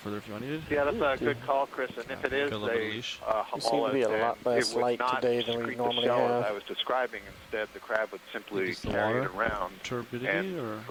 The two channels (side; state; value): both; identical; correlation 1.00